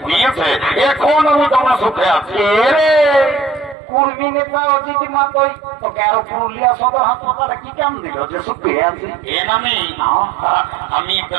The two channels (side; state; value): left; drops out; at 3.8 s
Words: দিয়েছে, এখন আমি তোমার সুখে আছি। কর্মী নেতা অজিত মাতই তোকে আরো পুরুলিয়া সদর হাসপাতালে কি কাম দিল যে সুখে আছি? এ নামি আমি একটা